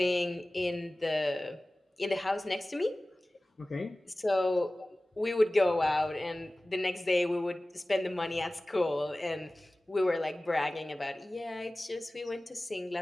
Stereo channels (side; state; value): both; normal; correlation 0.97